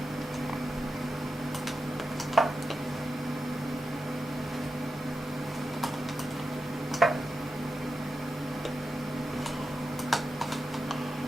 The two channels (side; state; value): both; normal; correlation 0.90